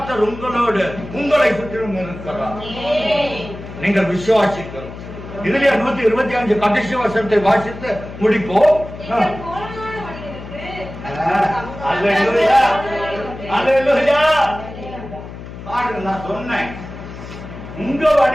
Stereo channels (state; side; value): noise; left; hum, 12 dB below the sound